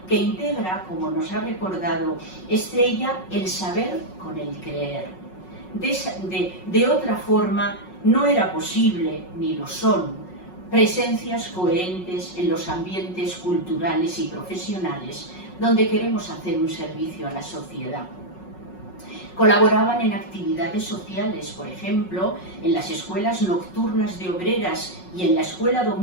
que integra, como nos ha recordado Estrella, el saber con el creer. De otra forma, no era posible, ni lo son, presencias coherentes en los ambientes culturales y profesionales donde queremos hacer un servicio a la sociedad. Colaboraban en actividades sociales, por ejemplo, en las escuelas nocturnas de obreras y en la escuela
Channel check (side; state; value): right; late; 5.4 ms